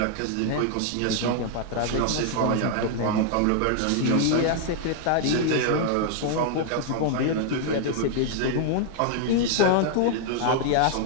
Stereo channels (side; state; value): both; different; correlation 0.00